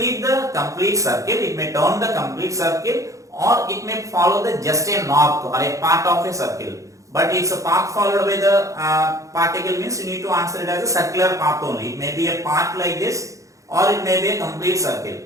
the complete circle, it may turn the complete circle, or it may follow the just a north or a part of a circle. But it's a path followed by the particle means you need to answer it as a circular path only. It may be a path like this, or it may be a complete circle.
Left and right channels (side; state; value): left; late; 0.15 ms